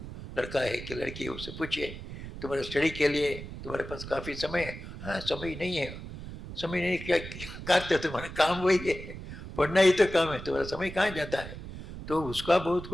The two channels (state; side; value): noise; right; rumble, 11 dB below the sound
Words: लड़का है कि लड़की है, उससे पूछिए तुम्हारे स्टडी के लिए तुम्हारे पास काफ़ी समय है? हाँ, समय नहीं है। समय नहीं, क्या करते हो? तुम्हारा काम वही है, पढ़ना ही तो काम है, तुम्हारा समय कहाँ जाता है? तो उसका बहुत